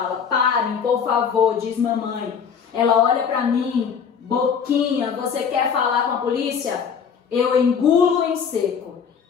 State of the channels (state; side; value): quieter; right; 6.9 dB